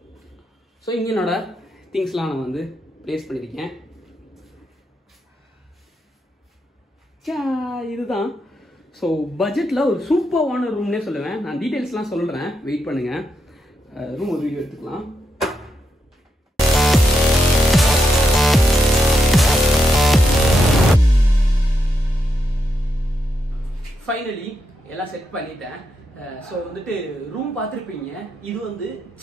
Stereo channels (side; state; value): both; normal; correlation 0.83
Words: ஸோ இங்கே என்னோட திங்ஸ்லாம் நான் வந்து ப்ளேஸ் பண்ணியிருக்கேன். இதுதான். ஸோ பட்ஜெட்டில் ஒரு சூப்பர்வான ரூம்னே சொல்லுவேன். நான் டீட்டெயில்ஸ்லாம் சொல்கிறேன், வெயிட் பண்ணுங்கள். ரூம் ஒரு வீடியோ எடுத்துக்கலாம். ஃபைனலி எல்லாம் செட் பண்ணிட்டேன். ஸோ வந்துட்டு ரூம் பார்த்துருப்பீங்க. இது வந்து